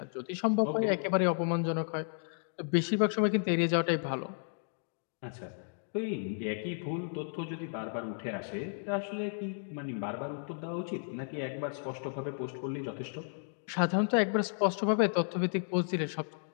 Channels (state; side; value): silent; right; digital silence